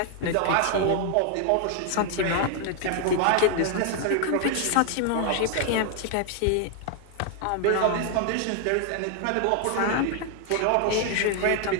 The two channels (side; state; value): both; different; correlation 0.00